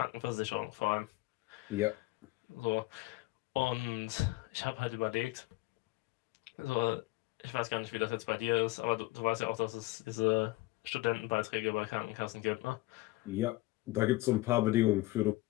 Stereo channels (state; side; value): quieter; right; 19.9 dB